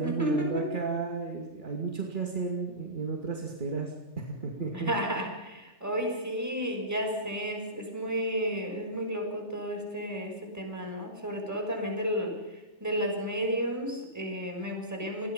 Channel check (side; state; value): right; late; 3.4 ms